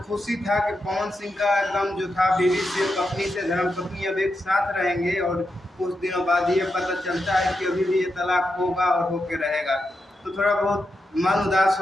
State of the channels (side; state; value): both; normal; correlation 0.86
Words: खुशी था कि पवन सिंह का एकदम जो था बीवी से, पत्नी से, धर्मपत्नी अब एक साथ रहेंगे, और कुछ दिनों बाद ये पता चलता है कि अभी भी ये तलाक होगा और होके रहेगा, तो थोड़ा बहुत मन उदास